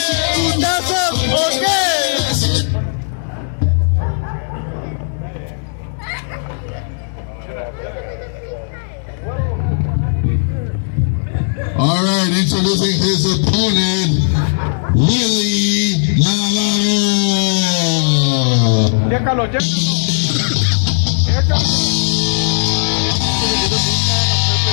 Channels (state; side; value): silent; right; digital silence